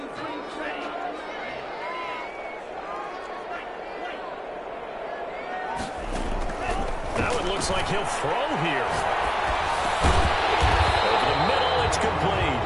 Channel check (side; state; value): both; identical; correlation 1.00